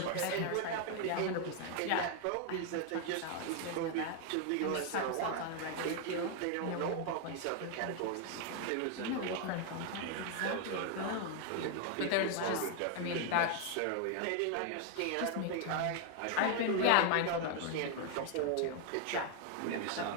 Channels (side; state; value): both; different; correlation 0.01